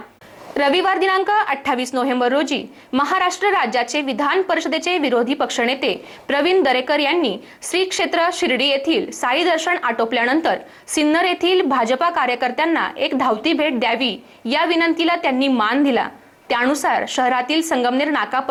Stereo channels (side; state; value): both; identical; correlation 1.00